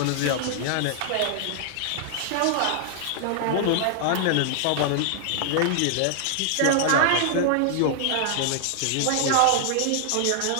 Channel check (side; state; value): both; different; correlation -0.01